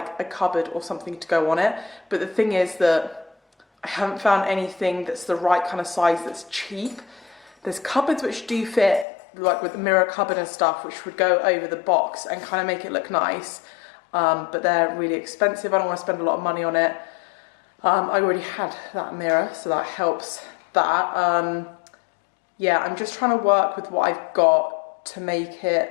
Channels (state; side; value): drops out; right; at 9.1 s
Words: a cupboard or something to go on it, but the thing is that I haven't found anything that's the right kind of size that's cheap. There's cupboards which do fit, like with the mirror cupboard and stuff, which would go over the box and kind of make it look nice, but they're really expensive. I don't want to spend a lot of money on it. I already had that mirror, so that helps that. Yeah, I'm just trying to work with what I've got to make